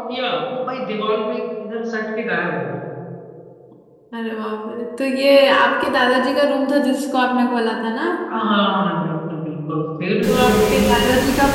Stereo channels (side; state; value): both; identical; correlation 1.00